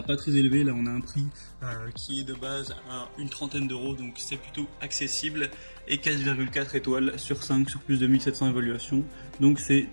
pas très élevé, là on a un prix qui est de base à une trentaine d'euros, donc c'est plutôt accessible, et 4,4 étoiles sur 5 sur plus de 1700 évaluations, donc c'est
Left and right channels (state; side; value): inverted; both; correlation -1.00